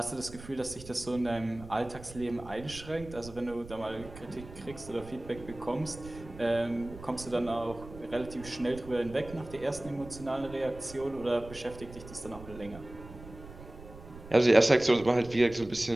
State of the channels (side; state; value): right; noise; rumble, 16 dB below the sound